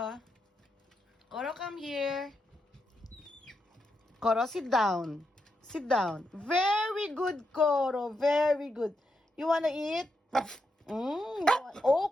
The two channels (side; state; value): both; normal; correlation 0.84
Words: Koro, come here. Koro, sit down. Sit down. Very good, Koro. Very good. You wanna eat?